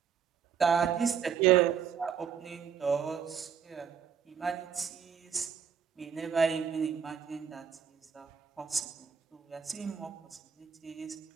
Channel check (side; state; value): left; quieter; 7.5 dB